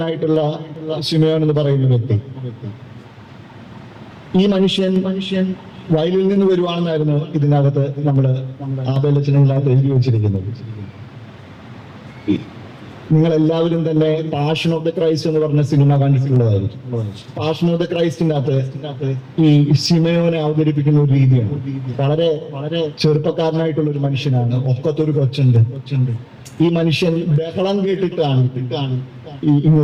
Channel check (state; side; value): identical; both; correlation 1.00